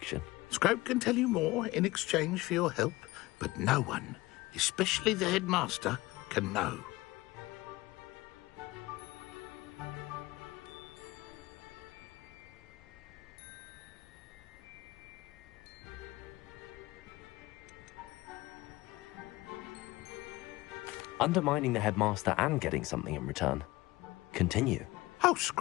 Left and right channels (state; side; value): quieter; right; 19.9 dB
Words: Scrope can tell you more in exchange for your help, but no one, especially the headmaster, can know. Undermining the headmaster and getting something in return. Continue. Oh,